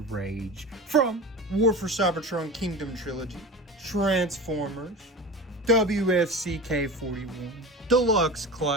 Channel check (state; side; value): normal; both; correlation 0.31